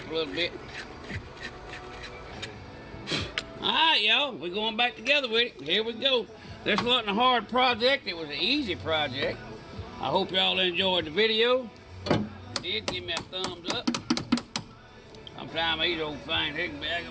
a little bit. All right, y'all. We're going back together with it. Here we go. This wasn't a hard project. It was an easy project. I hope y'all enjoyed the video. If you did, give me a thumbs up. Sometimes these old things, they can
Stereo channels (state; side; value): identical; both; correlation 1.00